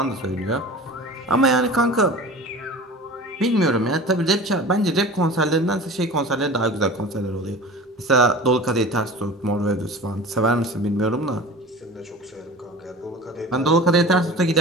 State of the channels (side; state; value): both; normal; correlation 0.37